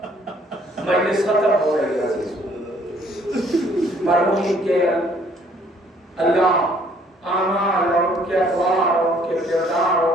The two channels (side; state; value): both; normal; correlation 0.61